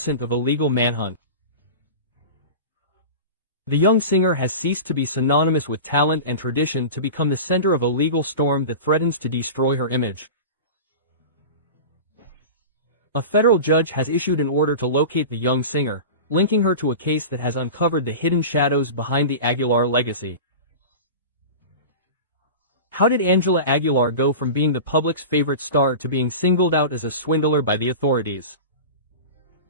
of illegal manhunt. The young singer has ceased to be synonymous with talent and tradition to become the center of a legal storm that threatens to destroy her image. A federal judge has issued an order to locate the young singer, linking her to a case that has uncovered the hidden shadows behind the Aguilar legacy. How did Ángela Aguilar go from being the public's favorite star to being singled out as a swindler by the authorities?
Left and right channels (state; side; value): inverted; both; correlation -0.31